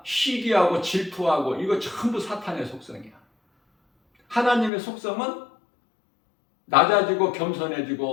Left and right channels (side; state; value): right; drops out; at 4.7 s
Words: 시기하고 질투하고 이거 전부 사탄의 속성이야. 하나님의 속성은 낮아지고